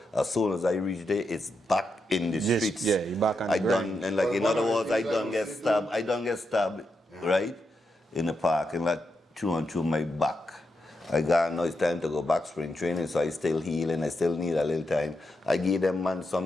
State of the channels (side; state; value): both; normal; correlation 0.84